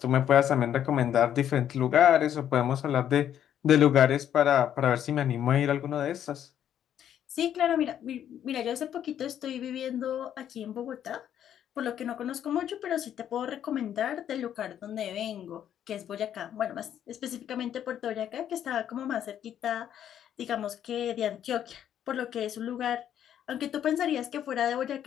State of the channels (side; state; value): right; quieter; 10.1 dB